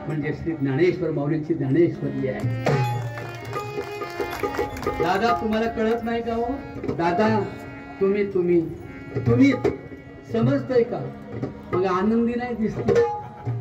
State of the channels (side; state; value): both; identical; correlation 1.00